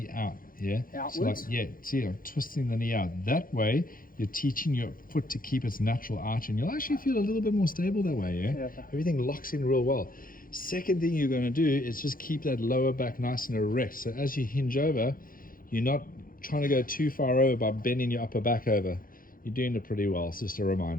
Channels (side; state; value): right; late; 0.41 ms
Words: out, yeah? Outwards? So like, yeah, see, I'm twisting the knee out. That way, you're teaching your foot to keep its natural arch, and you'll actually feel a little bit more stable that way, yeah? Everything locks in real well. Second thing you're going to do is just keep that lower back nice and erect. So as you hinge over, you're not trying to go too far over by bending your upper back over. You're doing it pretty well. It's just a